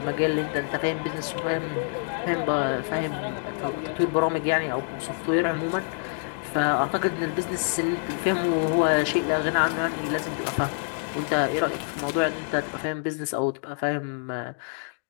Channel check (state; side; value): silent; right; digital silence